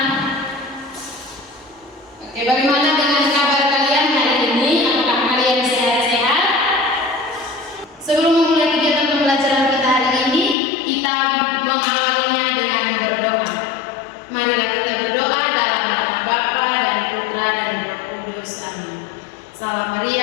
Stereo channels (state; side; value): drops out; right; at 10.6 s